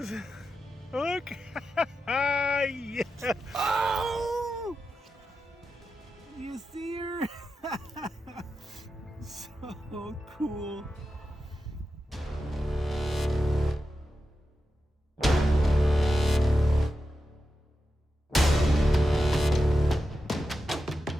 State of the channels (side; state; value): both; normal; correlation 0.90